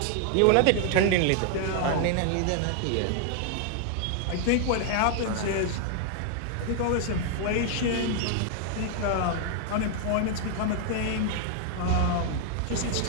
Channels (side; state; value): both; different; correlation 0.00